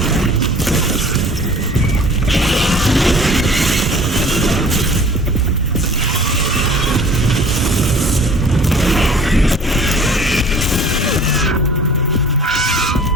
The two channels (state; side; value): normal; both; correlation 0.48